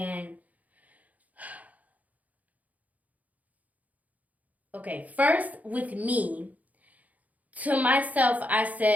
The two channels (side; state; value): left; late; 0.075 ms